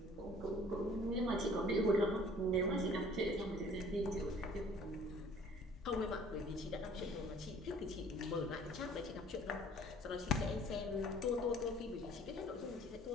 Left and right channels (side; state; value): both; normal; correlation 0.52